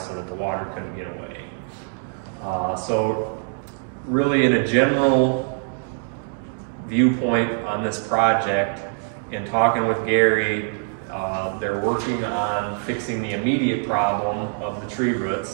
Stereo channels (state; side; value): silent; left; digital silence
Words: that the water couldn't get away. So really, in a general viewpoint on this project, in talking with Gary, they're working on fixing the immediate problem of the tree